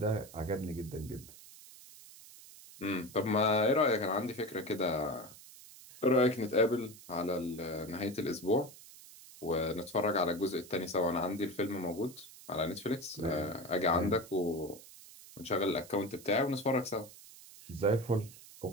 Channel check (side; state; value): right; noise; hiss, 19 dB below the sound